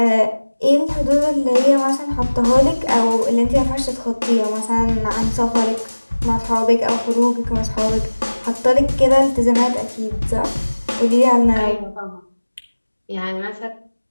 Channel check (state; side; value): inverted; both; correlation -1.00